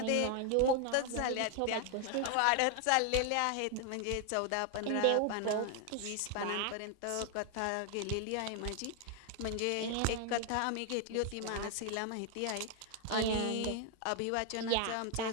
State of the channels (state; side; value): different; both; correlation 0.00